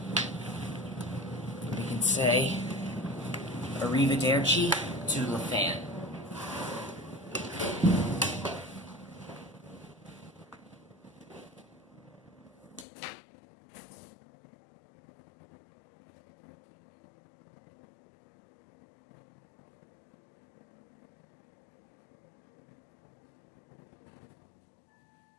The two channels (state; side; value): drops out; right; at 12.9 s